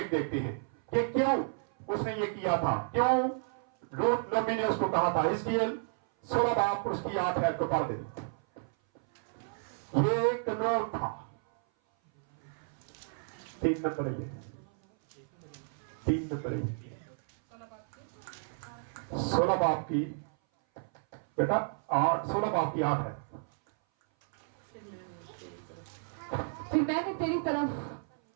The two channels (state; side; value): silent; left; 56 dB below the other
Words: देखते हैं कि क्यों उसने ये किया था, क्यों रूथ नबी ने उसको कहा था। हिजकिय्याह 16 बाब उसकी 8 है तो पढ़ दे। ये कानून था 3 नंबर है, 3 नंबर है 16 बाब की बेटा 16 बाब की 8 है। फिर मैं